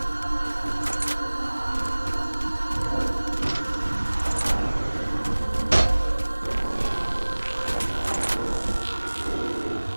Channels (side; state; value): both; inverted; correlation -1.00